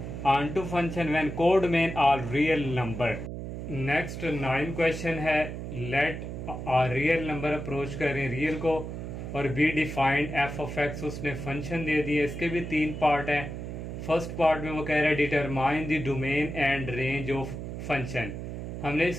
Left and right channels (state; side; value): noise; right; hum, 7 dB below the sound